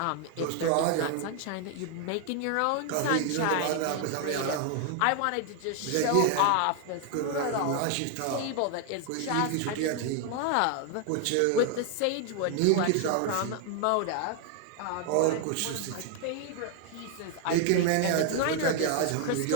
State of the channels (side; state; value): both; different; correlation 0.00